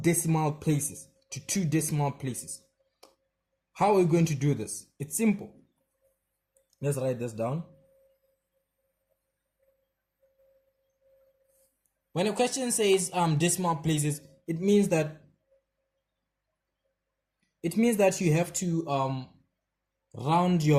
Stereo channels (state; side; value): identical; both; correlation 1.00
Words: places. How are we going to do this? It's simple. Let's write this down. When a question says decimal places, it means that you have to round